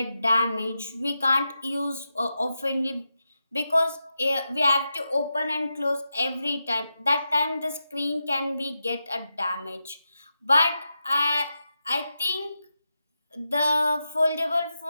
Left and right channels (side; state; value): both; inverted; correlation -0.89